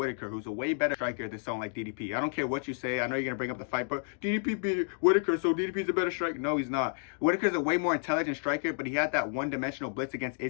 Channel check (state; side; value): silent; right; 57 dB below the other